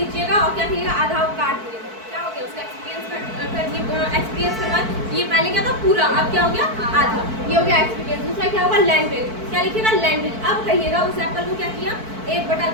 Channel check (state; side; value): late; left; 4.5 ms